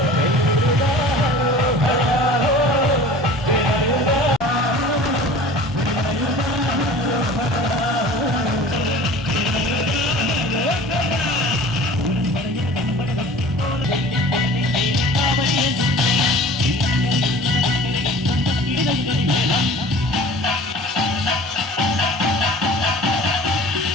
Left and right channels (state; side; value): normal; both; correlation 0.43